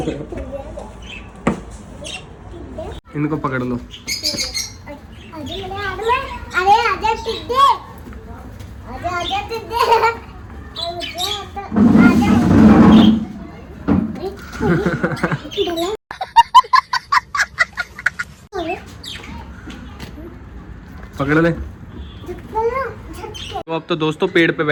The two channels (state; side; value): identical; both; correlation 1.00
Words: इनको पकड़ लो। अरे आजा पकड़ ले। तो अब तो दोस्तों पेड़ पे